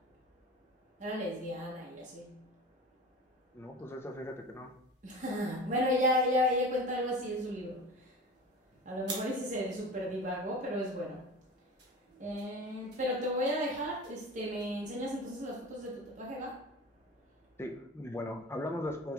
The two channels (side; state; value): both; normal; correlation 0.35